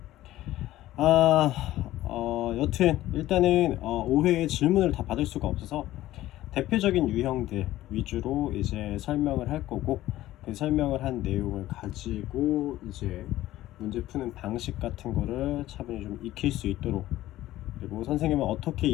여튼 일단은 5회의 질문을 다 받을 수가 없어서 대표적인 유형들 위주로 이제 설명을 할 거고, 그 설명을 한 내용을 가지고 이제 문제 푸는 방식 같은 거를 차분히 좀 익힐 수 있도록, 그리고 선생님은 어떻게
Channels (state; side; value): quieter; right; 15.1 dB